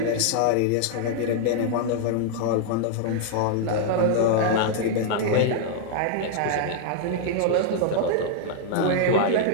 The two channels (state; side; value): different; both; correlation -0.01